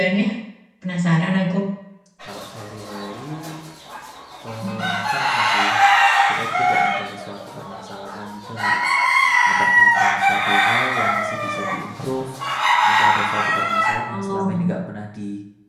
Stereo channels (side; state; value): both; identical; correlation 1.00